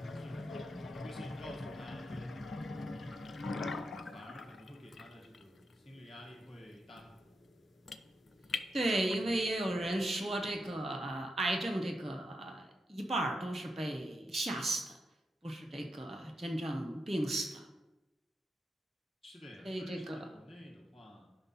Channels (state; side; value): normal; both; correlation 0.86